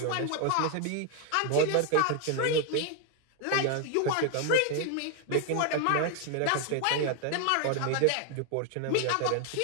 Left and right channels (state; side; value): different; both; correlation 0.01